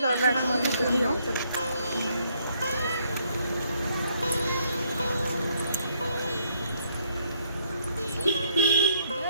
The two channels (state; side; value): inverted; both; correlation -0.70